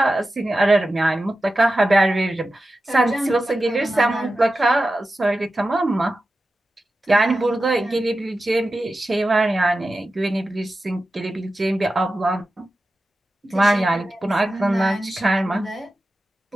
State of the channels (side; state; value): both; normal; correlation 0.93